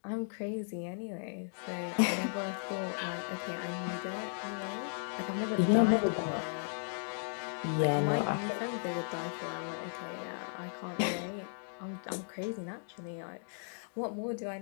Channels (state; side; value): silent; right; digital silence